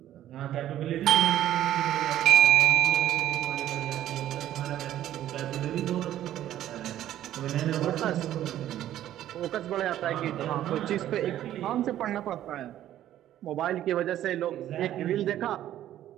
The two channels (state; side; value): quieter; left; 12.4 dB